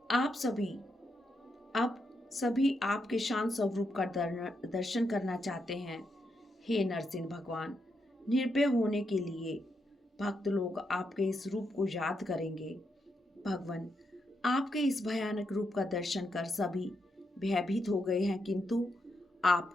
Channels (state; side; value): normal; both; correlation 0.82